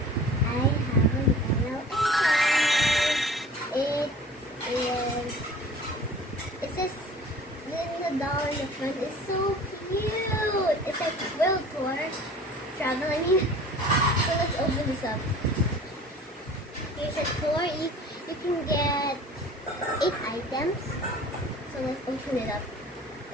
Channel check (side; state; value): both; normal; correlation 0.44